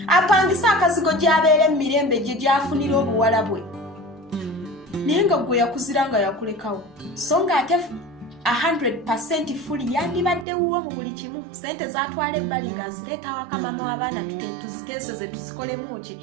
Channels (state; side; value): drops out; left; at 10.5 s